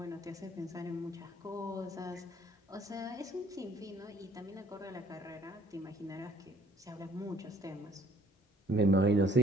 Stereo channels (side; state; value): both; normal; correlation 0.59